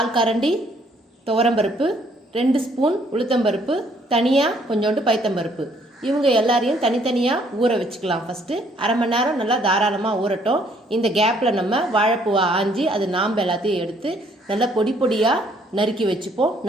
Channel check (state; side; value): normal; both; correlation 0.65